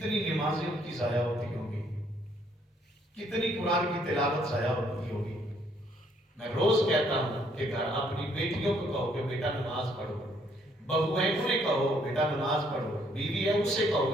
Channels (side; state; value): both; normal; correlation 0.67